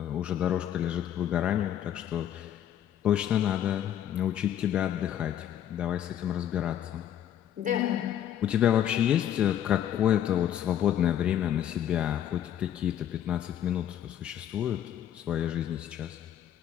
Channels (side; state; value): right; quieter; 10.6 dB